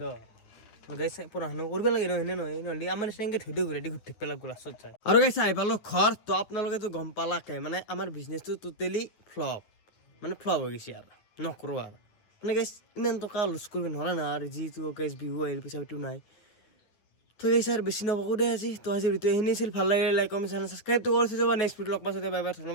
গাইছে পঢ়া শুনা কৰিব লাগে নহয় নহয় নহ'লে আমাৰ নিচিনাকৈ থৈ দিওঁ ঘূৰাই দি ঘূৰি থাকিব লাগিব লাষ্টত যায় আৰু গাইছে আহি পালোঁ ঘৰ তো আপোনালোকেতো গম পালাকে মানে আমাৰ বিজনেছটো টোটেলি ফ্লপ মানে ফ্লপ হৈ গৈছে আৰু নকৰোঁ আৰু মানে গাইছ ইমান টকা লছ কৰিব নোৱাৰা না আৰু যিটো গাইছ বিহু আহিল পইচা পাতিও নাই তো গাইছ আৰু বেছি নকওঁ দে আজি তো আজি ভিডিঅ' এইখিনি আছিল ভাল লাগে লাইক কমেণ্ট চেনেল ছাবস্ক্ৰাইবটো কৰি থৈ যাব নেক্সট ভিডিঅ' লগ পাইছোঁ বাই বাই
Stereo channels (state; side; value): late; right; 9.7 ms